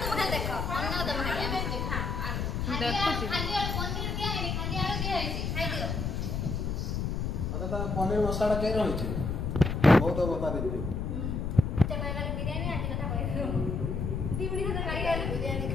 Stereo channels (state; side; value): noise; left; rumble, 1 dB below the sound